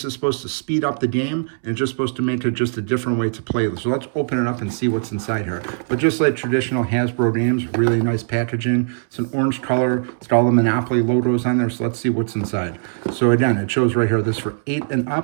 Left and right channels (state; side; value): silent; left; 65 dB below the other